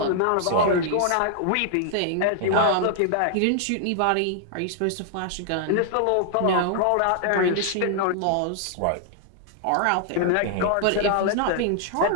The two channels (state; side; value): different; both; correlation -0.01